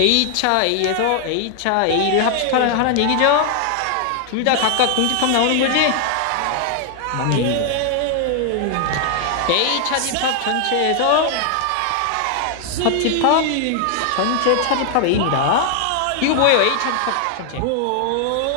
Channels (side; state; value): both; different; correlation 0.00